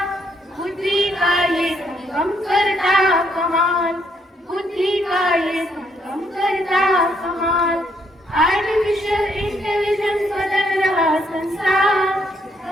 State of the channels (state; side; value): normal; both; correlation 0.72